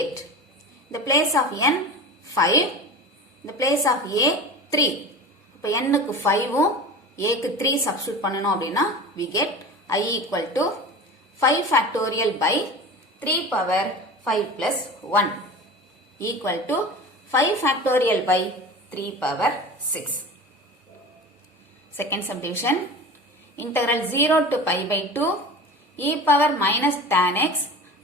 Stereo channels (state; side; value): normal; both; correlation 0.33